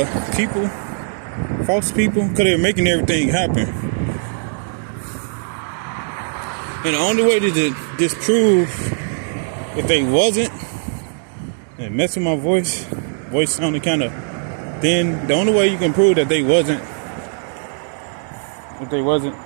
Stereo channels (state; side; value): silent; left; 65 dB below the other